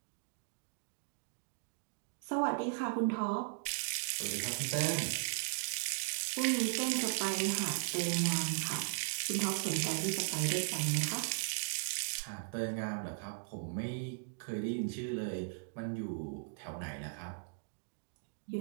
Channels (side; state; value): left; silent; digital silence